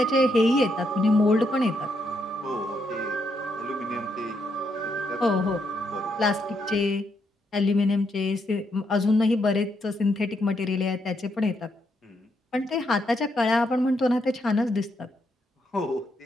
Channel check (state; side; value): normal; both; correlation 0.78